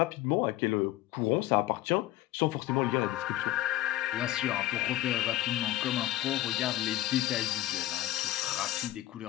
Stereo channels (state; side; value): quieter; right; 15.1 dB